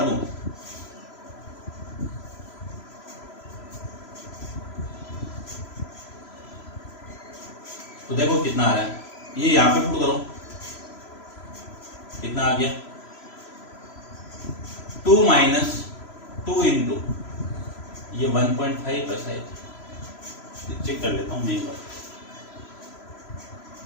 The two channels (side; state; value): right; late; 3.0 ms